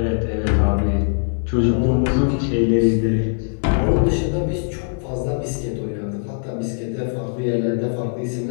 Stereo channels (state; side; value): silent; right; digital silence